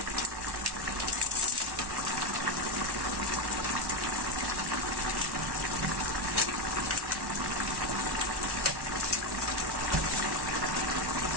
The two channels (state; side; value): late; left; 1.1 ms